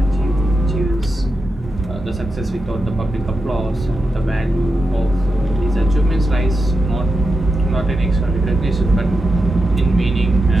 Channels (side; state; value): both; normal; correlation 0.88